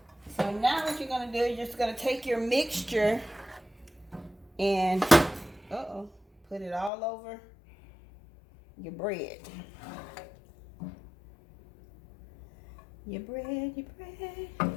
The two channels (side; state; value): right; drops out; at 6.9 s